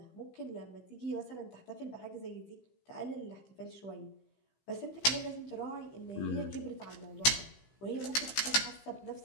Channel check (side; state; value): right; late; 15 ms